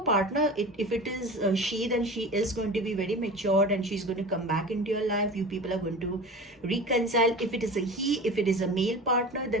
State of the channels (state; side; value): normal; both; correlation 0.34